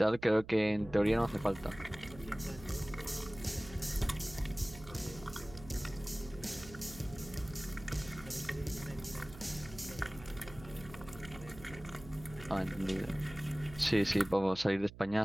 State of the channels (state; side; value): noise; right; hum, 16 dB below the sound